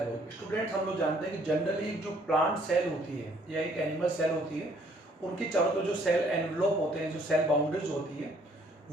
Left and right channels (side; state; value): both; normal; correlation 0.63